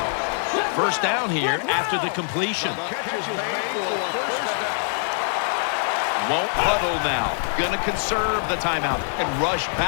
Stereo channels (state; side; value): silent; right; digital silence